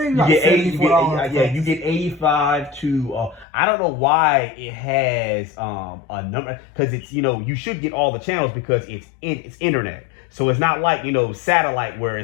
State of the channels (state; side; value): drops out; right; at 3.5 s